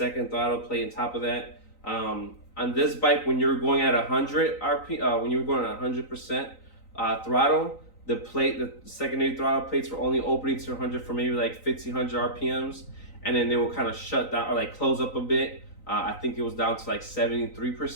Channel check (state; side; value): late; right; 3.9 ms